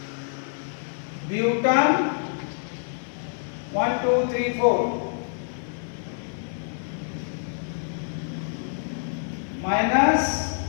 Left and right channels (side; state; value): right; silent; digital silence